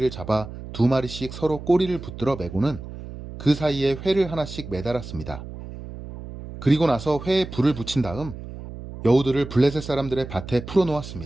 잡아 2마리씩 서로 꼬리를 붙들어 매고는 그 사이에 회를 하나씩 매달았습니다. 그리고 나서 회에 불을 붙인 다음 여우들을 블레셋 사람들의 밭에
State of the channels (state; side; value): noise; right; hum, 12 dB below the sound